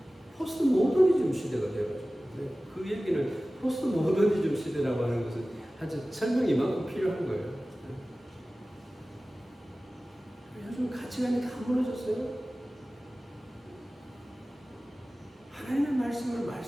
포스트 모더니즘 시대가 되어가지고 그 얘기는 포스트 모더니즘 시대라고 하는 것은 아주 설명이 이만큼 필요한 거예요. 요즘 가치관이 다 무너졌어요. 하나님의 말씀을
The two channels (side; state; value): both; normal; correlation 0.97